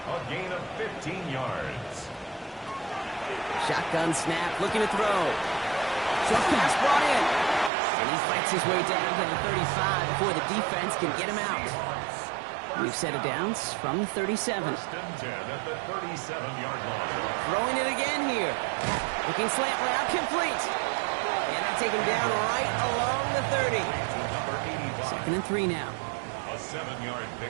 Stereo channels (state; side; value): drops out; left; at 7.7 s